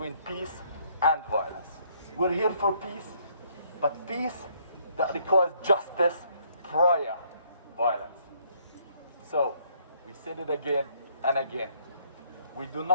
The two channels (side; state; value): both; inverted; correlation -0.66